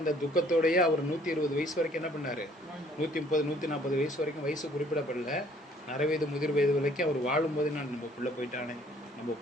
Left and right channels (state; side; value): normal; both; correlation 0.59